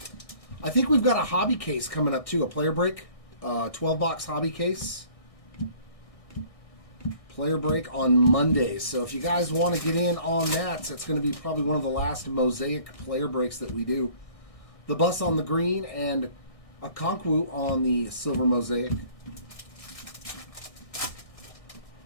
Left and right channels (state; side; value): late; right; 1.6 ms